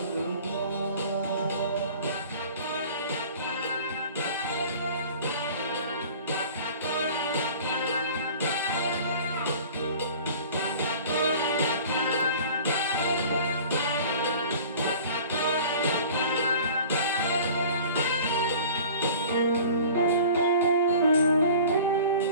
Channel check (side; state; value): both; inverted; correlation -0.43